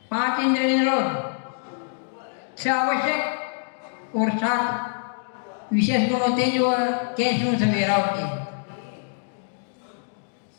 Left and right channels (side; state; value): right; silent; 62 dB below the other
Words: 5 इंद्रिय निरोध, 6 आवश्यक और 7 विशेष गुण होते हैं जो कैसे सवेरा होती है।